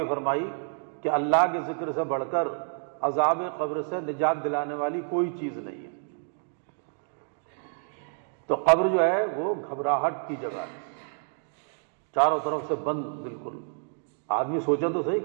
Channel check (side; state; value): left; silent; 59 dB below the other